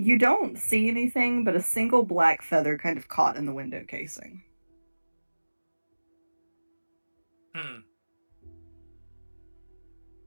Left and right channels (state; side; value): inverted; both; correlation -1.00